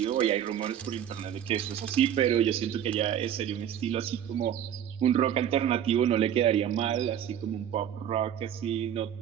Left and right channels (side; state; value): left; quieter; 9.9 dB